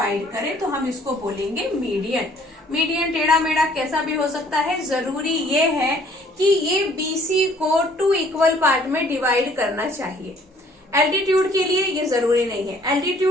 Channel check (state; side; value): normal; both; correlation 0.59